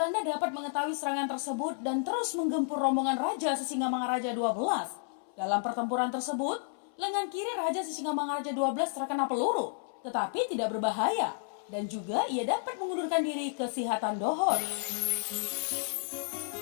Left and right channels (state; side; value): silent; right; 57 dB below the other